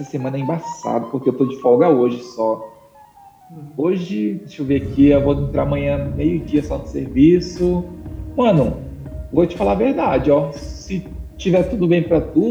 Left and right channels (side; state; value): both; identical; correlation 1.00